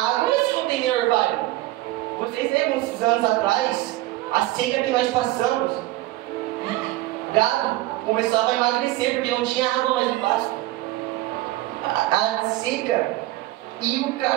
se não tem nem orvalho? Vocês lembram uns anos atrás, a seca que nós passamos? O gado começava a emagrecer porque não tinha água mais no pasto. A seca. E o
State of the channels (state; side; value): quieter; left; 17.3 dB